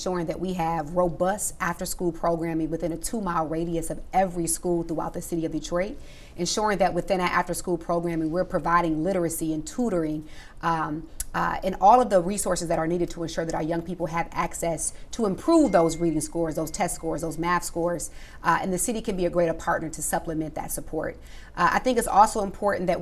that we have robust after-school programming within a 2-mile radius of every school throughout the city of Detroit, ensuring that within our after-school programming, we're providing literacy and tutoring, and all of the resources that are needed to ensure that our young people have access to improve those reading scores, those test scores, those math scores, and the city can be a greater partner to supplement that support. I think it's also important that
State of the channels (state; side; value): identical; both; correlation 1.00